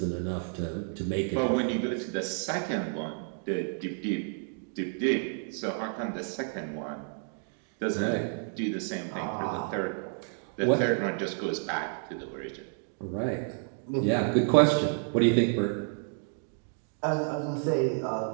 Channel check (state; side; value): silent; left; 55 dB below the other